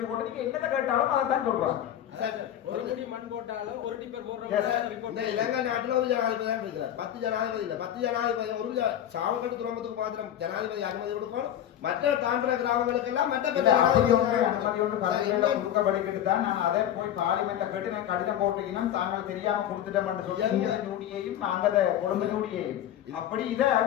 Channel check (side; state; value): right; quieter; 10.9 dB